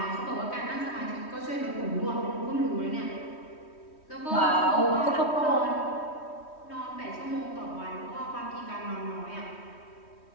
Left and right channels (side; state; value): right; late; 3.1 ms